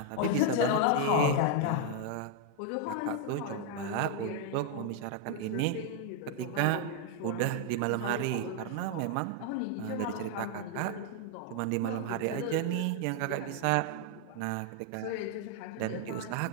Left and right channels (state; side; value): different; both; correlation 0.00